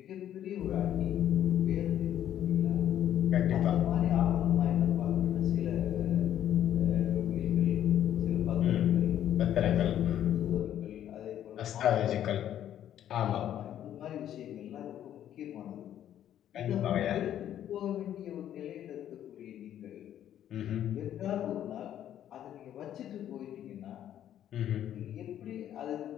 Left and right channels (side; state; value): right; quieter; 11.0 dB